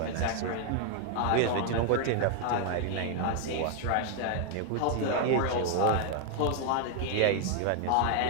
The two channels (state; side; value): different; both; correlation 0.00